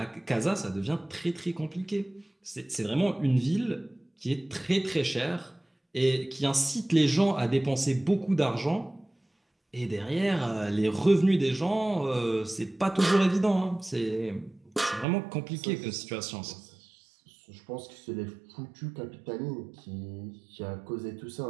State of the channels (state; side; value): drops out; left; at 15.1 s